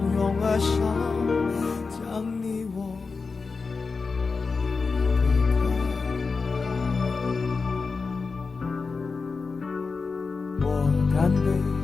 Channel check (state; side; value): quieter; right; 4.5 dB